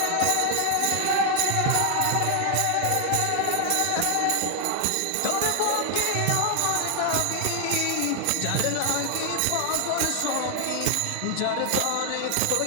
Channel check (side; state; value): both; different; correlation 0.00